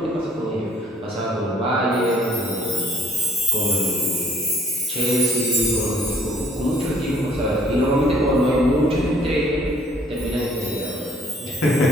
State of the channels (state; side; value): normal; both; correlation 0.59